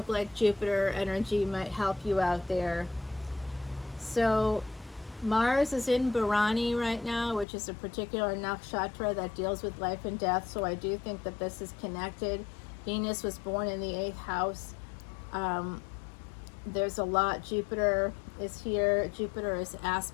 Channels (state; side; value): drops out; right; at 7.5 s